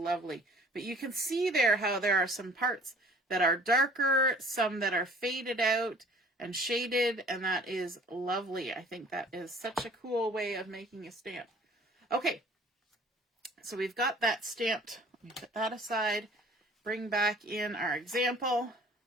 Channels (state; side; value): normal; both; correlation 0.51